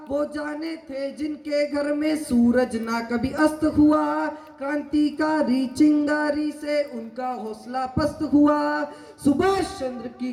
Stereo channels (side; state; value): both; identical; correlation 1.00